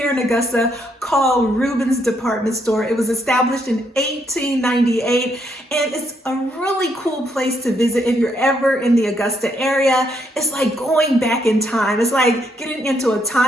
in Augusta called Ruben's Department Store. It was established in 1898 and it's a really cool place to visit if you're ever in the Augusta area. It's like going back in time. It's like getting into a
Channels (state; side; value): normal; both; correlation 0.75